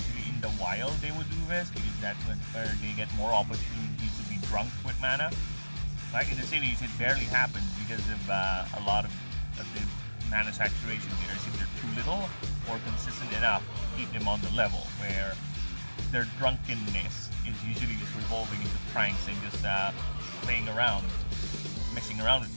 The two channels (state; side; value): inverted; both; correlation -1.00